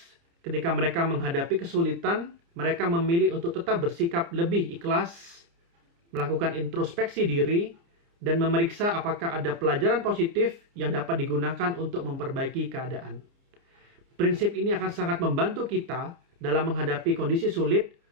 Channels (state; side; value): late; left; 29 ms